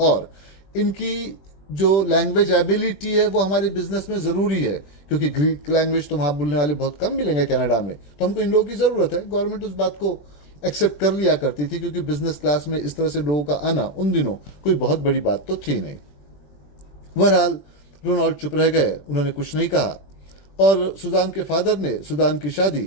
इनकी जो लैंग्वेज एबिलिटी है वो हमारे बिजनेस में ज़रूरी है, क्योंकि ग्रीक लैंग्वेज तो वहाँ बोलने वाले बहुत कम मिलेंगे कनाडा में, तो हमको इन लोगों की ज़रूरत है। गवर्नमेंट उस बात को एक्सेप्ट कर लिया करती थी, क्योंकि बिजनेस क्लास में इस तरह से लोगों का आना उन दिनों कोई बहुत बड़ी बात तो थी नहीं। बहरहाल रोनाल्ड चुप रह गए, उन्होंने कुछ नहीं कहा, और सुजान के फादर ने सुजान की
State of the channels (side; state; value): right; late; 21 ms